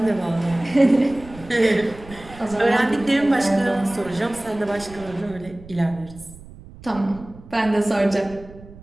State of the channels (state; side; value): noise; right; rumble, 19 dB below the sound